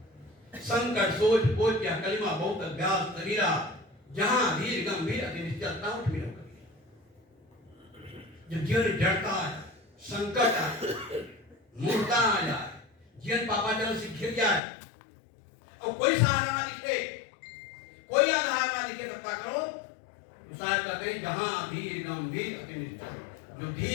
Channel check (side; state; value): right; drops out; at 14.6 s